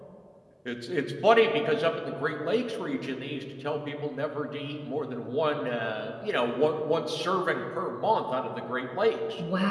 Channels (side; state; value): both; identical; correlation 1.00